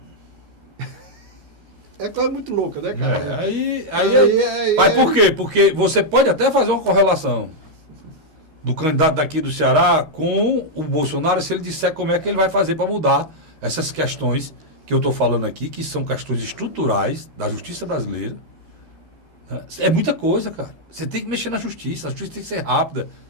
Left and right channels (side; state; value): left; late; 13 ms